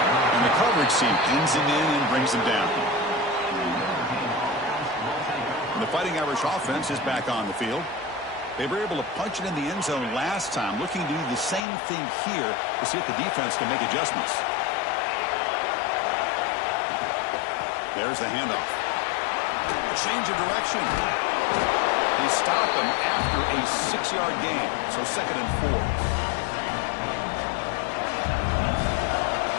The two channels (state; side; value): drops out; right; at 11.6 s